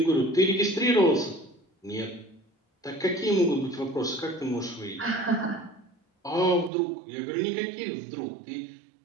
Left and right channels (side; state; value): left; drops out; at 6.7 s